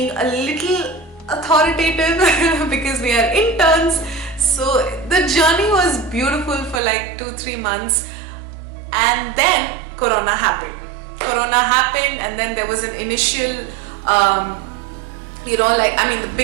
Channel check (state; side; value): drops out; left; at 6.8 s